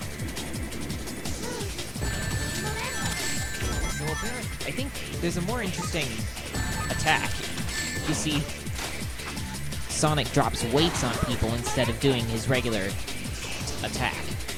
So apparently, I think there's a more interesting attack. You see, Sonic drops weights on people instead of doing his regular attack.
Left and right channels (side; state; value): both; identical; correlation 1.00